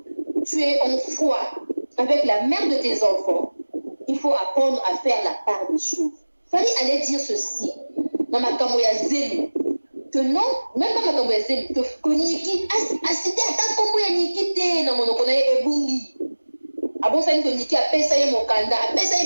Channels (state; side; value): inverted; both; correlation -1.00